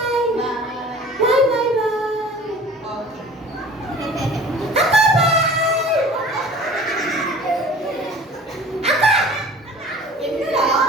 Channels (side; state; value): both; normal; correlation 0.45